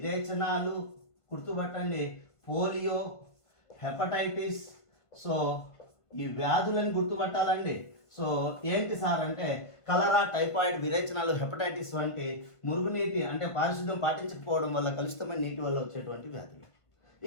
గుర్తుపట్టండి పోలియో, హెపటైటిస్, సో ఈ వ్యాధులను గుర్తుపట్టాలండి. సో ఏంటి సార్ అంటే కలరా, టైఫాయిడ్, విరేచనాలు, హెపటైటిస్ వంటి మురుగునీటి అంటే పారిశుద్ధ్యం పాటించకపోవడం వల్ల, కలుషితమైన నీటి వల్ల వచ్చేటువంటి వ్యాధులు.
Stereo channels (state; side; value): late; right; 1.5 ms